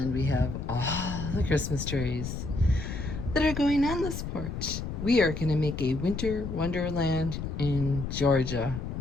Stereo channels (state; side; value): noise; left; rumble, 6 dB below the sound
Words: we have all the Christmas trees that are going on this porch. We are gonna make a winter wonderland in Georgia.